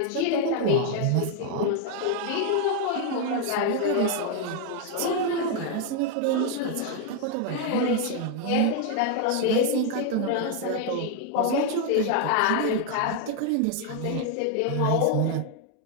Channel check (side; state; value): both; different; correlation 0.00